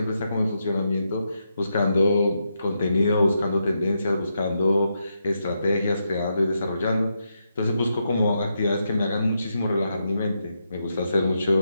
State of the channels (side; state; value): both; inverted; correlation -0.83